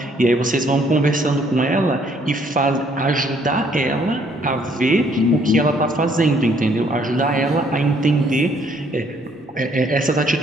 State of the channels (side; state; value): both; normal; correlation 0.65